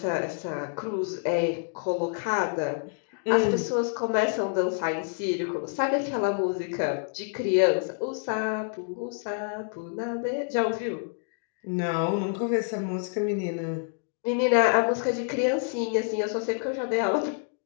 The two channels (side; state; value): right; silent; 60 dB below the other